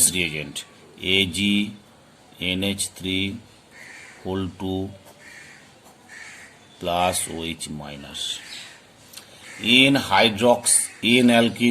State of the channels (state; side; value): identical; both; correlation 1.00